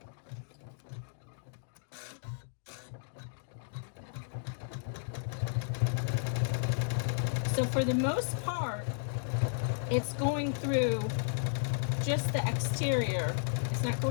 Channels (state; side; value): silent; right; digital silence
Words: So for the most part, it's going through just the exterior. It's not